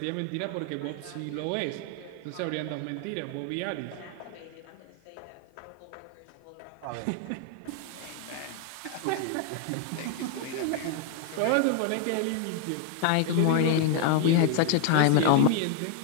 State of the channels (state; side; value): different; both; correlation 0.00